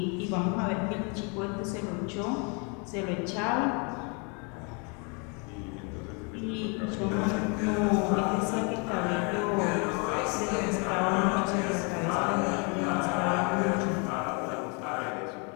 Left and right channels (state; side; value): quieter; right; 34.3 dB